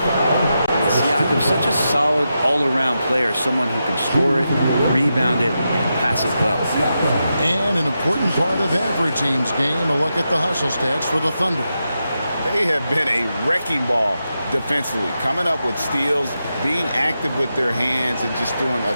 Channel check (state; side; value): inverted; both; correlation -0.88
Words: such a solid all-around player, someone who can score it, rebound it, and pass it well. And an important part of every team's game, a look at the hustle stats for the Thunder. They have been a wrecking ball defensively, coming up with steals, being active with their hands, and just doing a